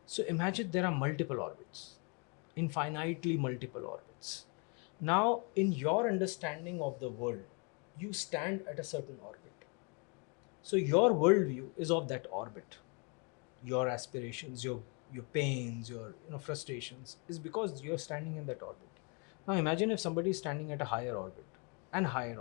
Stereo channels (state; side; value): quieter; right; 34.5 dB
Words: So imagine there are multiple orbits, infinitely multiple orbits. Now, in your understanding of the world, you stand at a certain orbit. So your worldview is of that orbit. Your aspirations, your pains, your frustrations is because you're standing in that orbit. Now imagine if somebody is standing at a higher orbit, and higher